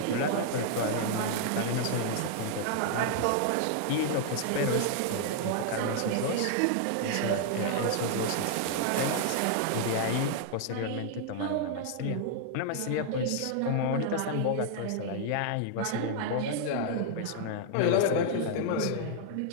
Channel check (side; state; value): both; different; correlation 0.00